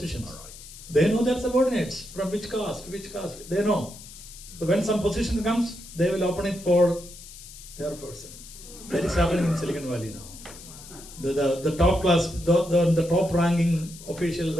They know their subordinates from which caste, they know. So when some position comes, they will open it for their person. That is happening in Silicon Valley now. The top class, the top ranking officials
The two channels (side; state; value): left; noise; hiss, 16 dB below the sound